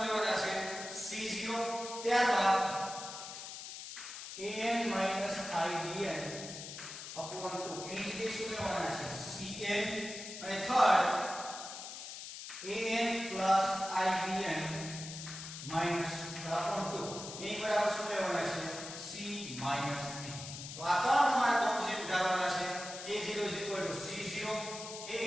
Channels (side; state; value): left; noise; hiss, 10 dB below the sound